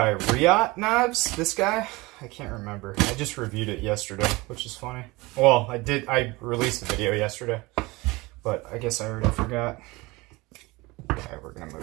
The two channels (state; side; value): quieter; left; 22.7 dB